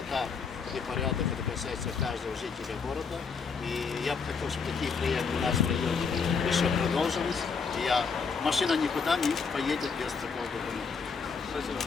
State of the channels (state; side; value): quieter; right; 5.5 dB